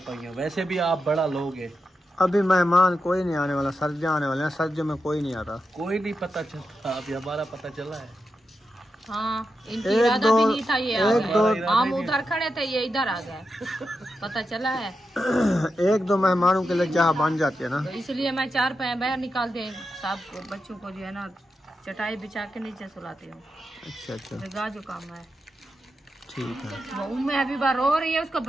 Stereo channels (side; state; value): both; normal; correlation 0.88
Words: पहिए, वैसे भी आप बड़ा लोग हैं। अभी मेहमान कोई नहीं आने वाला, सर्दियाँ आने वाले हैं, सर्दियों में कोई नहीं आता, कोई नहीं पता चलता, अभी हमारा पता चला है। हाँ इनकी इरादा भी नहीं था, ये आ गए, हम उधर खड़े थे ये इधर आ गए पता चला है। 1-2 मेहमानों के लिए जहाँ बन जाती है ना, तो इसलिए मैं 4 पैर बाहर निकाल दे साहब को, बच्चों को जो है ना चटाई बिछा के नीचे सुलाती हूँ। अच्छा अच्छा जगह जो काम है ठीक है। वो मैं अभी बार रो रही है, उसको